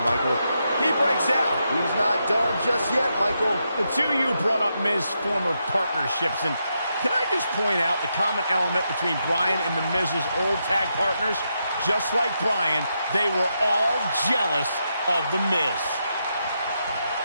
Michael. He breaks out. He's not done just yet, Michael. The two of you brought up Miz's former partnerships, and can I just point out the common element between Bryan and the Miz's old tag partners? Just like Bryan, they were all jealous of the Miz.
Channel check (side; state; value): both; inverted; correlation -0.83